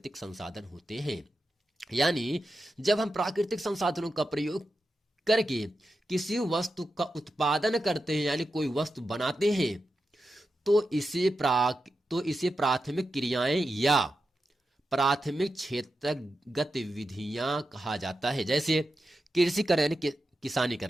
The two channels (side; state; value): both; normal; correlation 0.90